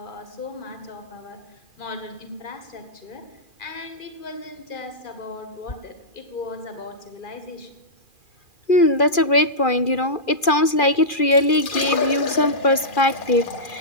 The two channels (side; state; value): right; late; 2.4 ms